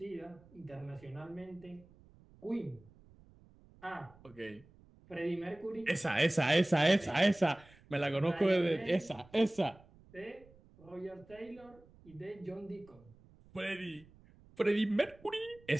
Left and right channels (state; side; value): noise; right; rumble, 26 dB below the sound